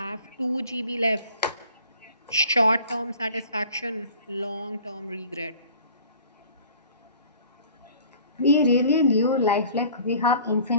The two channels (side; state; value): both; inverted; correlation -0.49